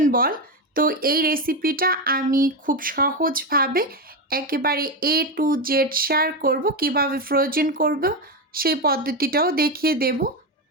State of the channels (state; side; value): normal; both; correlation 0.13